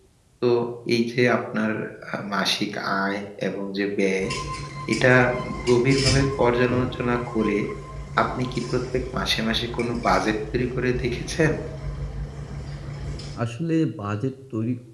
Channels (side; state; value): both; identical; correlation 1.00